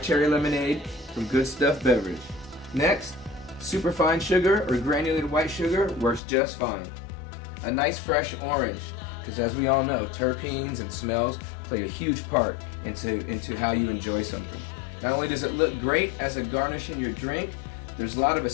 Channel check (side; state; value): right; drops out; at 6.2 s